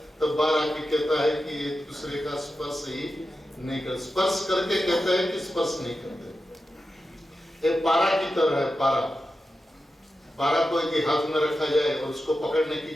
तब बार आके कहता है कि एक दूसरे का स्पर्श ही नहीं कर, स्पर्श करके कहता है कि स्पर्श नहीं करते। एक पारा की तरह है, पारा को एक हाथ में रखा जाए और उसको पकड़ने की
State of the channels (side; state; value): both; normal; correlation 0.91